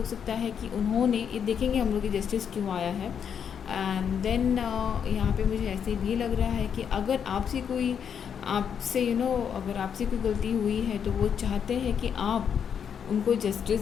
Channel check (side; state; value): right; quieter; 7.7 dB